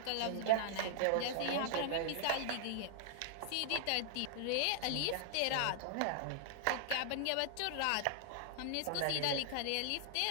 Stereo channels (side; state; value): both; different; correlation 0.00